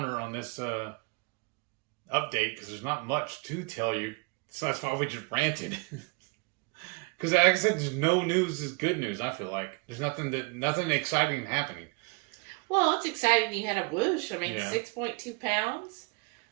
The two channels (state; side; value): quieter; left; 32.4 dB